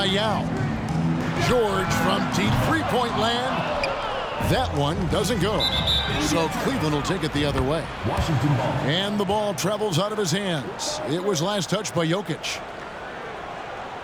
Yao. George from deep three-point land. That one doesn't go. So Cleveland will take it the other way. Washington ball. And the ball travels out of his hands. It was last touched by Jokic.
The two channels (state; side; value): identical; both; correlation 1.00